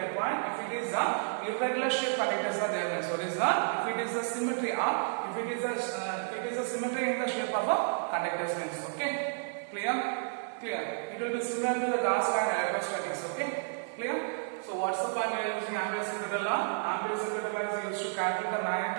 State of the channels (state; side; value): silent; left; 55 dB below the other